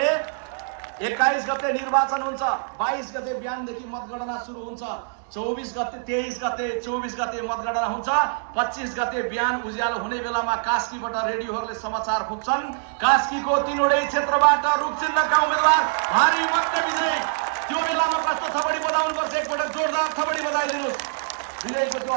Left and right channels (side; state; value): left; silent; digital silence